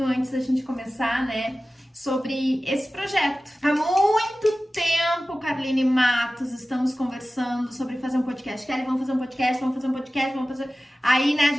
antes da gente começar, né? Sobre esse projeto. Há muito tempo, Carline Matos, estamos conversando sobre fazer um podcast. Kelly, vamos fazer um podcast, vamos fazer um podcast, vamos fazer... Aí, né, a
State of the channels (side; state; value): both; normal; correlation 0.96